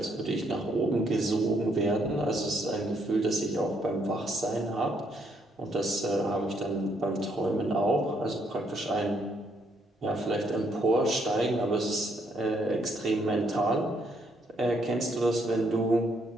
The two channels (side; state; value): both; normal; correlation 0.72